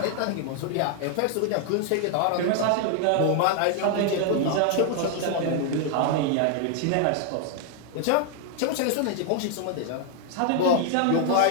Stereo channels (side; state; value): both; different; correlation 0.00